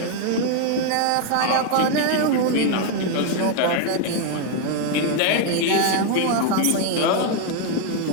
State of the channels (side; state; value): both; different; correlation 0.01